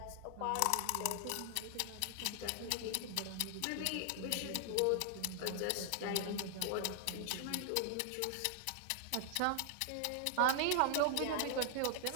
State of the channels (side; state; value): both; different; correlation 0.00